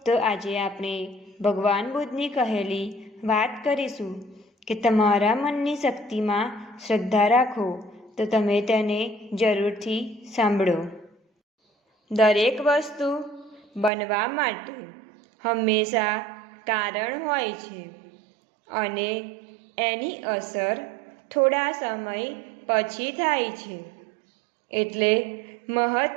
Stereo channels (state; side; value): drops out; left; at 13.9 s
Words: તો આજે આપણે ભગવાન બુદ્ધની કહેલી વાત કરીશું કે તમારા મનની શક્તિમાં શ્રદ્ધા રાખો તો તમે તેને જરૂરથી સાંભળો. દરેક વસ્તુ બનવા માટે હંમેશા કારણ હોય છે અને એની અસર થોડા સમય પછી થાય છે. એટલે